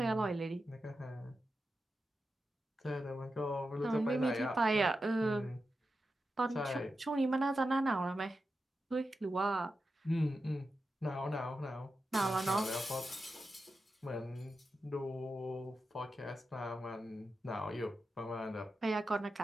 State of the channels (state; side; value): normal; both; correlation 0.89